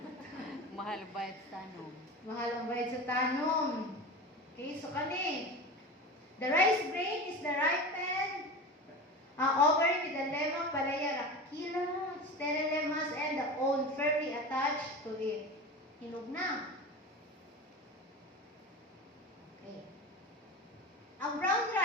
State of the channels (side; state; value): both; normal; correlation 0.29